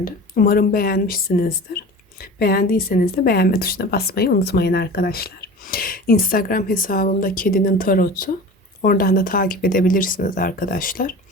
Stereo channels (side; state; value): both; normal; correlation 0.36